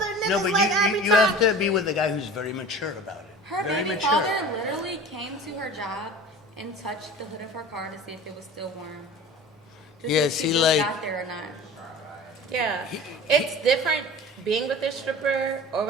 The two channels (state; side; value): normal; both; correlation 0.39